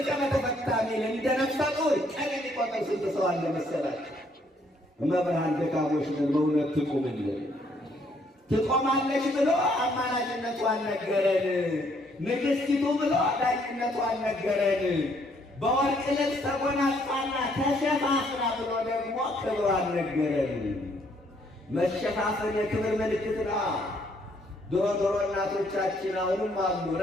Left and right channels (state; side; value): normal; both; correlation 0.68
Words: በተፈታ ሚል እንደ ነፍሰ ጡር ቀን የሚቆጥር ስንት ሰው አለ መሰላችሁ? መብርሃን ደካሞች ነን፣ በእውነት ትቁምልን። ትቆማለች ብሎ አማላጅነቷን ነገረን። ንግሥቲቱ ብሎ ዳኝነቷን ነገረን። በወርቅ ልብስ ተጎናጽፋና ተሸፋፍና ብሎ ደግሞ ክብሯን ነገረን። መሸፋፈን የክብር ምልክት ነው። ድሮ እናቶቻችን አሁንም አሉ